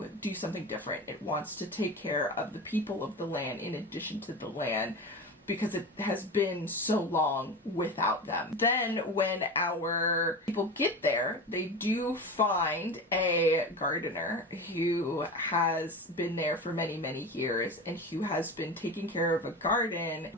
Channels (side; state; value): both; normal; correlation 0.28